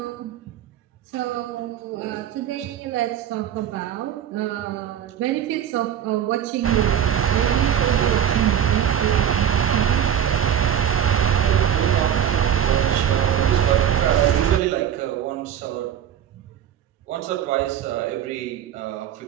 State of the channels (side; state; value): left; quieter; 9.6 dB